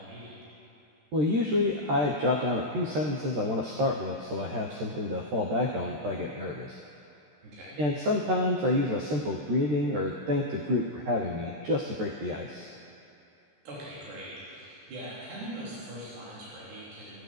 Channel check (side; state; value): left; late; 13 ms